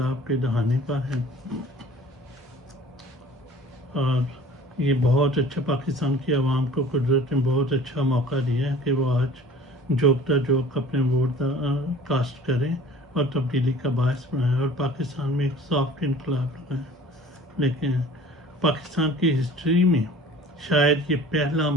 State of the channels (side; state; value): both; normal; correlation 0.46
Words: کے دہانے پر ہے، اور یہ بہت اچھا پاکستان کی عوام کو قدرت نے بہت اچھا موقع دیا ہے کہ وہ آج جوکتا جوک اپنے ووٹ کاسٹ کریں اور تبدیلی کا باعث بنائیں اور پاکستان میں ایک سافٹ انقلاب لگائیں. لیکن پاکستان کی ہسٹری میں شاید یہ پہلا